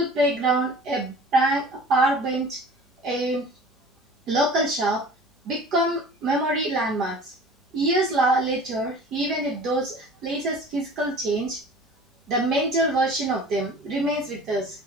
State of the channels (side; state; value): both; normal; correlation 0.43